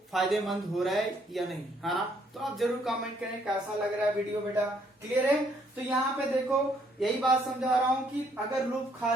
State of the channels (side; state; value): both; normal; correlation 0.68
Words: फायदेमंद हो रहा है या नहीं, है ना? तो आप जरूर कमेंट करें कैसा लग रहा है वीडियो बेटा, क्लियर है? तो यहाँ पे देखो यही बात समझा रहा हूँ कि अगर लूप